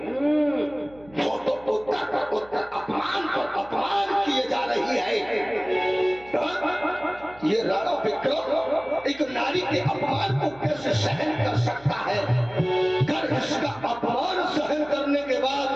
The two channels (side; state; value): right; noise; hum, 24 dB below the sound